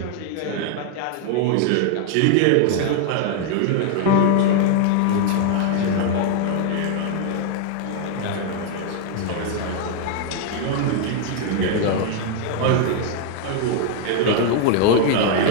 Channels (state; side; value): different; both; correlation 0.00